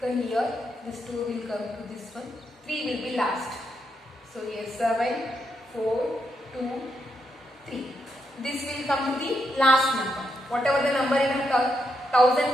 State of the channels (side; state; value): both; normal; correlation 0.81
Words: come here, this 2 will come to this one, 3 will be last. So here 7, 4, 2, 3. This will come to the last number. Whatever the number in a thousand